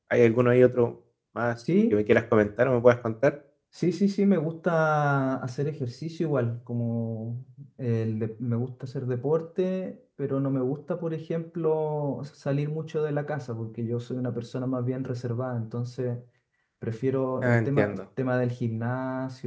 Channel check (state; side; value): identical; both; correlation 1.00